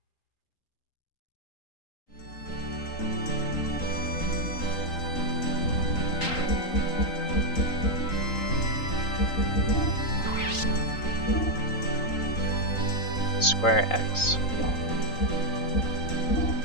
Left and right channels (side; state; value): right; late; 3.8 ms